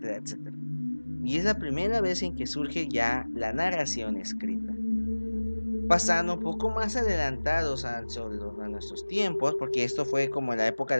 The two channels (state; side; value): inverted; both; correlation -1.00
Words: etcétera. Y es la primera vez en que surge ya la narración escrita. Pasando un poco más adelantados a nuestros tiempos, porque esto fue como en la época